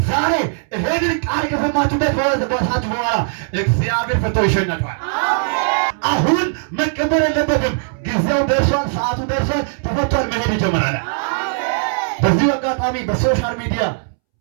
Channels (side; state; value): left; silent; 67 dB below the other